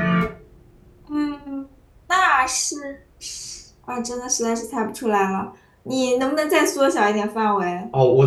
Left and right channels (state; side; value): identical; both; correlation 1.00